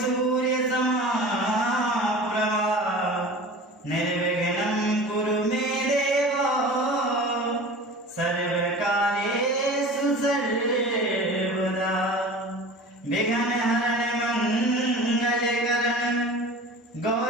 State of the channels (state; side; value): normal; both; correlation 0.38